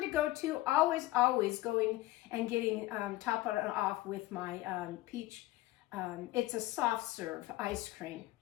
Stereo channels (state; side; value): quieter; right; 17.3 dB